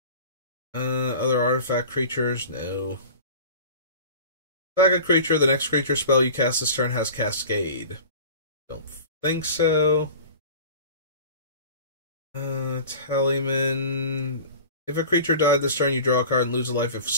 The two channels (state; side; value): inverted; both; correlation -0.39